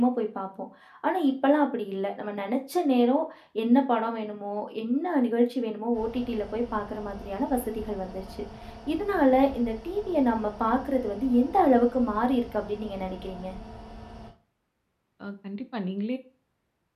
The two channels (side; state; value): both; identical; correlation 1.00